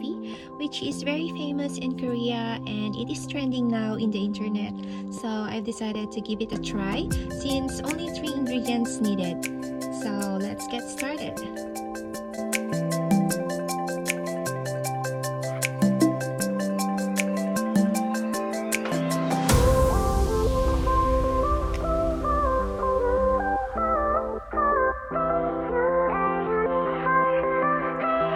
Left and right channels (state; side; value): identical; both; correlation 1.00